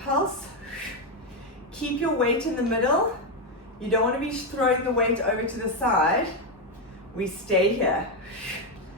Keep your weight in the middle. You don't want to be throwing the weight over to the side. We stay here.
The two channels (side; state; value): both; normal; correlation 0.06